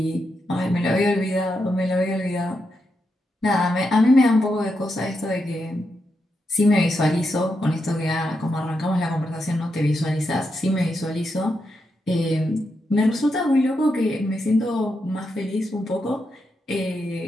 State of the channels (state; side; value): normal; both; correlation 0.84